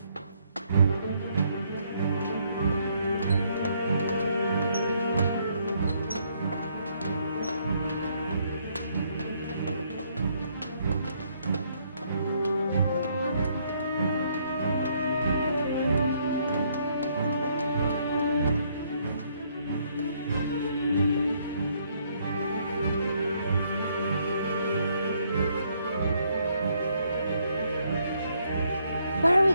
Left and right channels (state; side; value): inverted; both; correlation -0.70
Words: Where are we